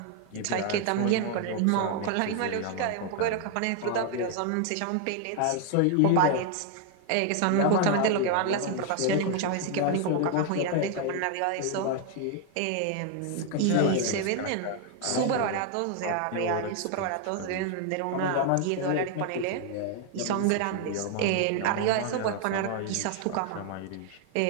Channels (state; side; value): different; both; correlation 0.00